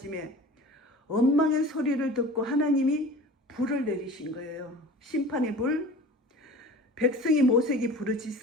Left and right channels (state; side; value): normal; both; correlation 0.39